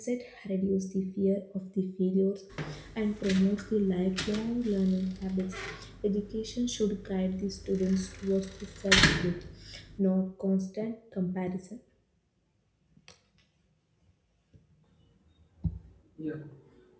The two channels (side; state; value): both; identical; correlation 1.00